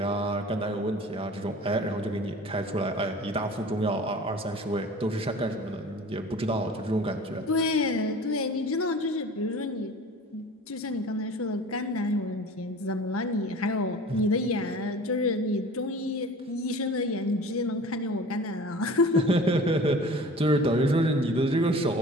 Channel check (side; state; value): both; normal; correlation 0.41